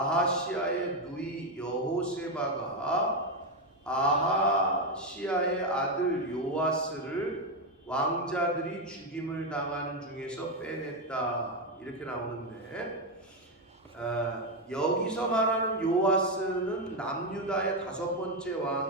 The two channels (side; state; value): both; normal; correlation 0.07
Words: 누이 여호세바가 아하시아의 아들 요아스를 왕자들이 죽임을 당하는 중에서 빼냈다, 이렇게 나오는데, 여기서 말하는 요아스는 남유다의 5번째